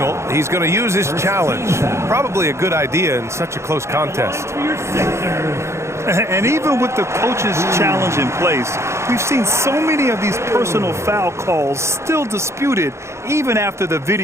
He's going to use his challenge. Probably a good idea in such a close contest. And even with the coach's challenge in place, we've seen so many of these personal foul calls still disputed even after the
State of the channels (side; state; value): left; late; 0.13 ms